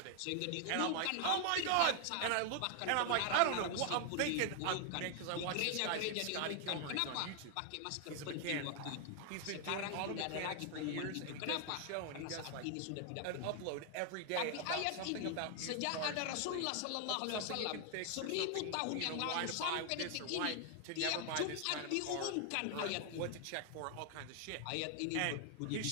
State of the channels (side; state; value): both; different; correlation 0.00